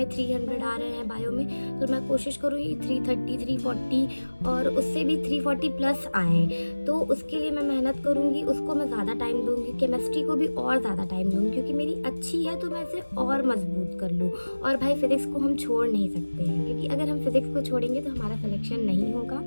300 आ रहे हैं बायो में, तो मैं कोशिश करूँगी 330 340 और उससे भी 340 प्लस आए। तो उसके लिए मैं मेहनत करूँगी, उसको मैं ज़्यादा टाइम दूँगी, केमिस्ट्री को भी और ज़्यादा टाइम दूँगी, क्योंकि मेरी अच्छी है तो मैं इसे और मजबूत कर लूँ। और भाई फिज़िक्स को हम छोड़ नहीं सकते हैं, क्योंकि अगर हम फिज़िक्स को छोड़ेंगे तो हमारा सिलेक्शन नहीं होगा।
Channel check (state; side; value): inverted; both; correlation -1.00